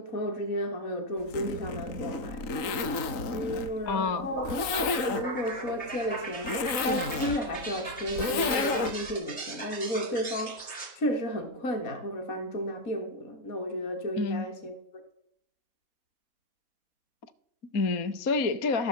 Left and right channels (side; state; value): right; late; 3.8 ms